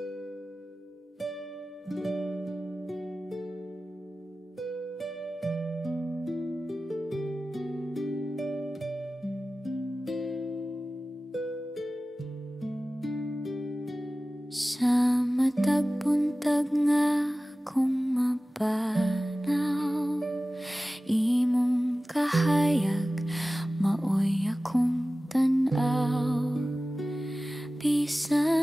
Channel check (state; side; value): normal; both; correlation 0.96